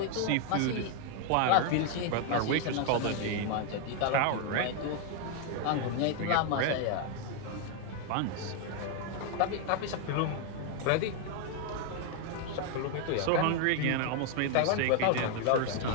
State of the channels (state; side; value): different; both; correlation 0.00